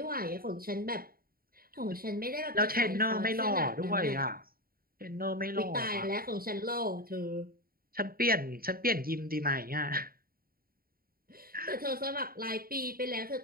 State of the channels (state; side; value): late; left; 0.43 ms